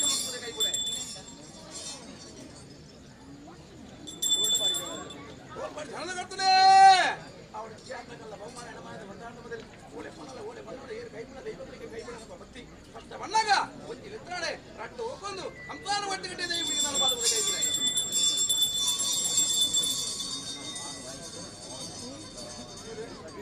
ಕೈ ಕೊಡೆ ಧನದ ಕರ್ತದೆ ಅವಳ ಜಾತಕಲ್ಲ ಬಹುಮಾನ ಎಡಮಾದ ಬಂದಾದ ಮೊದಲು ಓಲೆ ಪಣಲ ಓಲೆ ಬಣ್ಣದ ಏರು ಕೈ ಬಿಡ ದೈವಗಳಿಗೆ ಕೈ ಬಿಡ ಭಕ್ತಿ ಕಷ್ಟ ಬಣ್ಣಗ ಒಂಜಿ ಲಿತ್ರಾಡೆ ರಟ್ಟು ಹೋಗೊಂದು ಸಂತಾನ ಒಟ್ಟಿಗಟ್ಟೆ ದೈವರಿಗೆ ನಾನು ಬಾಲುಗಳಿಗೆ ಕೈ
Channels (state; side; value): identical; both; correlation 1.00